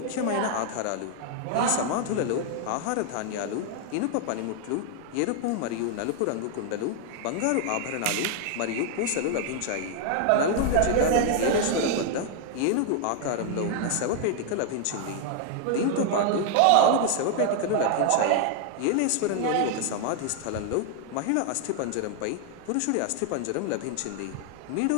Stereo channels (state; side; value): different; both; correlation 0.00